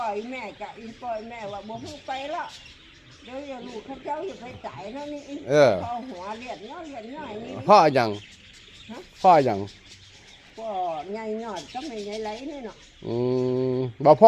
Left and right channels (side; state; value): both; identical; correlation 1.00